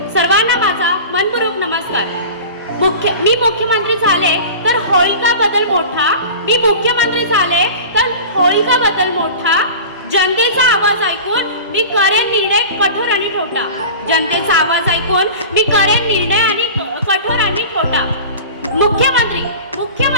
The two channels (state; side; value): inverted; both; correlation -0.35